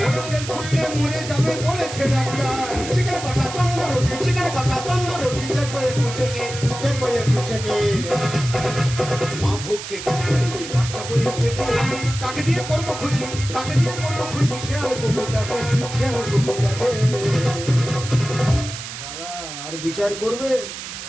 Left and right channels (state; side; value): noise; right; hiss, 9 dB below the sound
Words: বেল খুললে মরে যাবে বলেছে ডাক্তার। চিকেন কষা তন্দুর রুটি, চিকেন কষা তন্দুর রুটি, দেখবো একটু চেকে, দেখবো একটু চেকে। মা ভুগছে ক্যান্সারে, বাচ্চা বইয়ের পেটে, কাকে দিয়ে করবো খুশি? কাকে দিয়ে করবো খুশি? শিয়াল কুকুরটাকে, শিয়াল কুকুরটাকে। দাদা আর বিচার করবে?